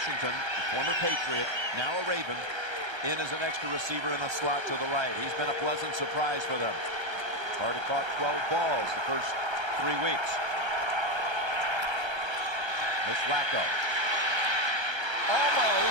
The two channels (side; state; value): left; late; 1.3 ms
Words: the former Patriot, now a Raven, in as an extra receiver in a slot to the right. He's been a pleasant surprise for them. Already caught 12 balls the first 3 weeks. Here's Flacco.